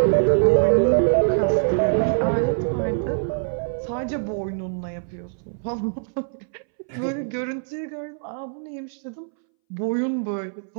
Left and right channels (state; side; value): silent; left; 63 dB below the other